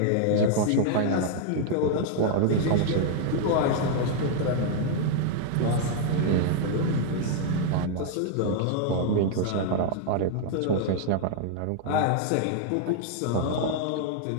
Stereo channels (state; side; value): different; both; correlation 0.00